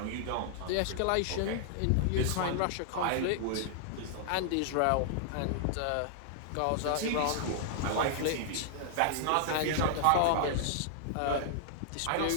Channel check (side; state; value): both; different; correlation -0.01